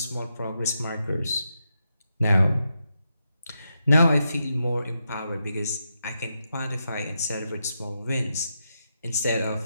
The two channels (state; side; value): inverted; both; correlation -0.85